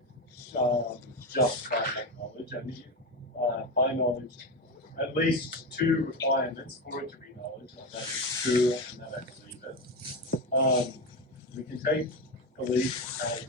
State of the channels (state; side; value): normal; both; correlation 0.17